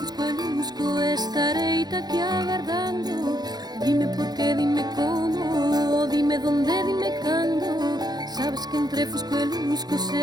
e lusco estarei aquí agardando. Dime por qué, dime como, dime donde, dime cando. Sabes que entre fusco e lusco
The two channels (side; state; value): left; late; 0.19 ms